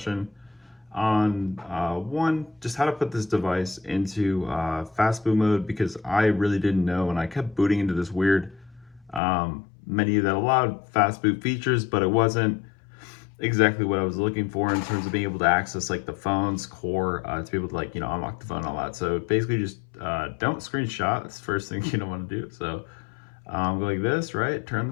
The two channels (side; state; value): right; drops out; at 9.2 s